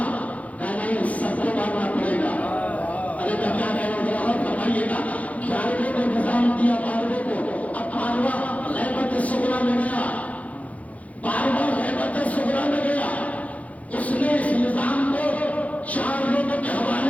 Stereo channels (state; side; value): late; right; 0.068 ms